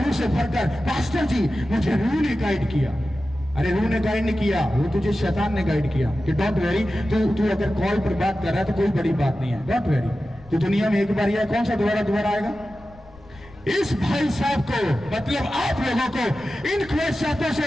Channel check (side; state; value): left; noise; rumble, 23 dB below the sound